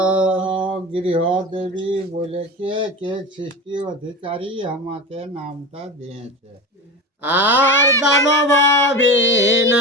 গৃহ দেবী বলে কে সৃষ্টি অধিকারী আমাকে নামটা দিয়েছে। আর দানব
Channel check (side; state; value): both; normal; correlation 0.27